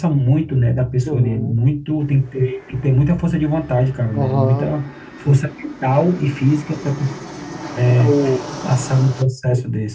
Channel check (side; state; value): both; identical; correlation 1.00